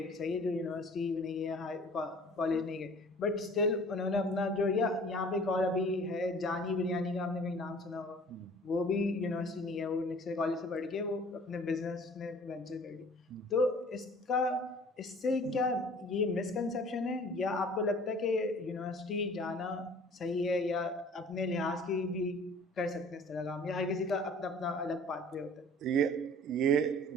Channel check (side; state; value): both; normal; correlation 0.49